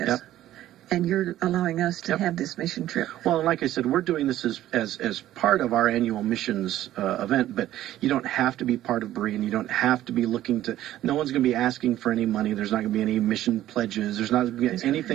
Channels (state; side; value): quieter; left; 13.5 dB